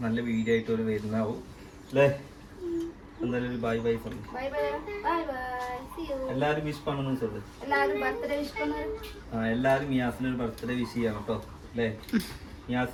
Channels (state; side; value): identical; both; correlation 1.00